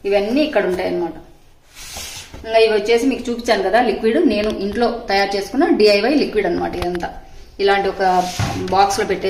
ఇవన్నీ ఇక్కడ ఉంటాయి అనమాట. ఇంకా ఇవి వచ్చేసి మీకు చూపించాను కదా లిక్విడ్, నేను ఇంట్లో తయారు చేసుకున్న DIY లిక్విడ్ అనమాట. ఇదంతా ఇలాంటి ఒక బాక్స్ లో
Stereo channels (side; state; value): both; identical; correlation 1.00